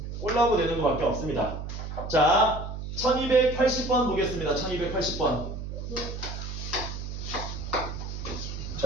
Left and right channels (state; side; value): noise; right; hum, 7 dB below the sound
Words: 꼴라고 되는 것밖에 없습니다. 자, 1280번 보겠습니다. 1280번.